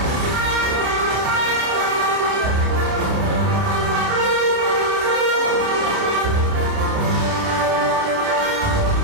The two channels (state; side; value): late; left; 29 ms